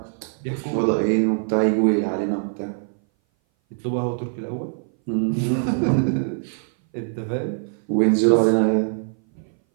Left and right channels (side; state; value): left; silent; 59 dB below the other